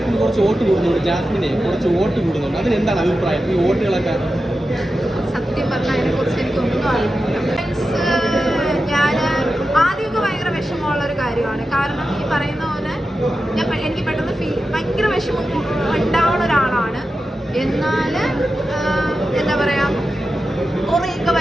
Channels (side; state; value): both; normal; correlation 0.91